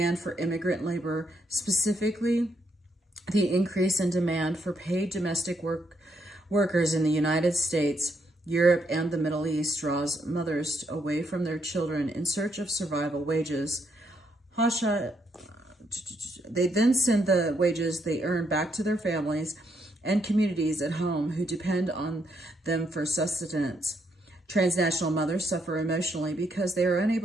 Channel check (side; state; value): both; normal; correlation 0.76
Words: for immigrant labor, specifically the increase in demand for paid domestic workers in the United States, Europe, and the Middle East draws mothers away from their children in search of survival wages. They then send the wages they earn back to their families and communities at home who depend on them for sustenance. Transnational mothers suffer emotionally because they are